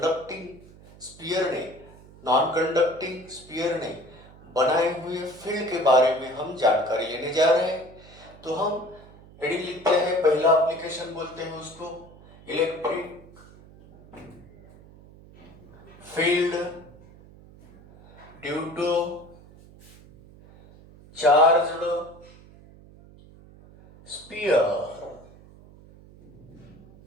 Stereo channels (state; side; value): noise; right; hum, 22 dB below the sound